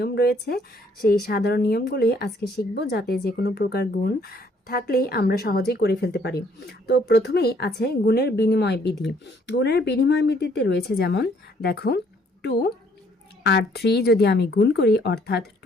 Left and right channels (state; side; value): normal; both; correlation 0.64